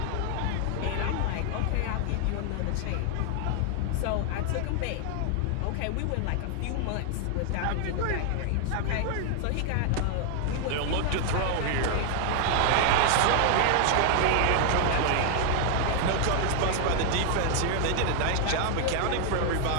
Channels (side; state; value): both; different; correlation 0.00